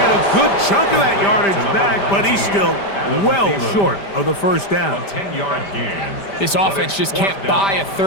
a good chunk of that yardage back, but he's still well short of the first down. A 10-yard gain. This offense just can't buy a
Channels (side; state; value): right; late; 5.1 ms